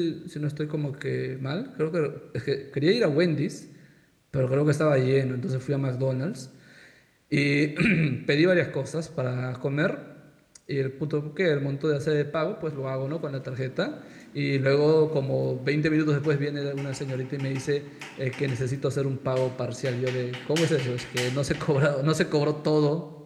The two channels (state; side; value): identical; both; correlation 1.00